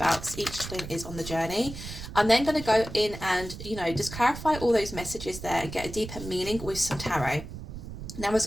each twin is on the journey. I'm then going to go in and just clarify all those messages there and get a deeper meaning with some tarot. Now,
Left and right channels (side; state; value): right; noise; rumble, 10 dB below the sound